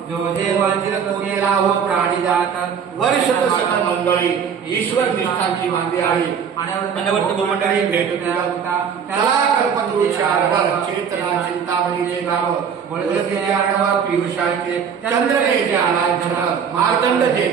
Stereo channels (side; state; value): left; quieter; 7.1 dB